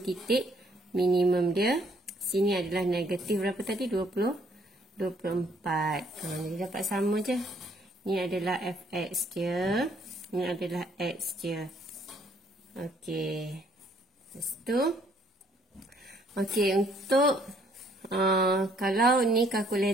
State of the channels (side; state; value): both; normal; correlation 0.65